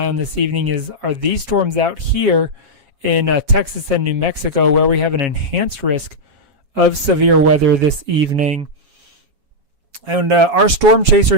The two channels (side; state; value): left; late; 7.3 ms